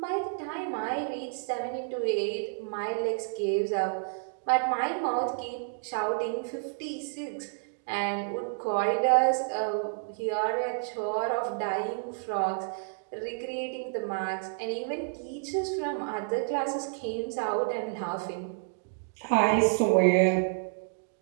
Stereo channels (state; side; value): silent; left; digital silence